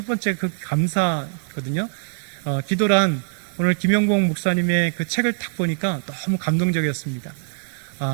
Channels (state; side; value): silent; left; digital silence